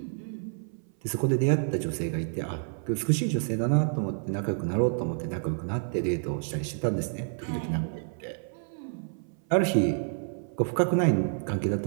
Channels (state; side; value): silent; left; 57 dB below the other